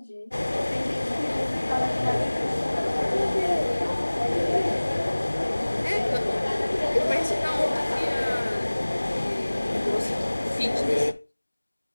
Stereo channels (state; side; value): inverted; both; correlation -1.00